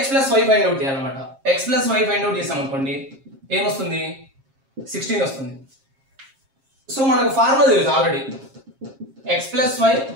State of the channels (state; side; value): late; left; 7.4 ms